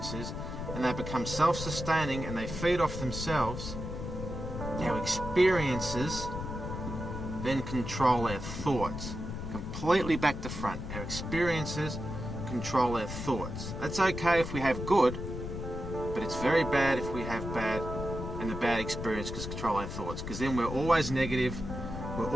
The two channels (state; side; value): noise; left; rumble, 6 dB below the sound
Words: and they become self-sustaining and they feed off themselves, our experiences then control our thoughts. Completely back to front. Our experiences control our thoughts. That's okay if we have good, but it's very bad if we have bad, and the bad experience can control our thoughts, because then we're always negative, we're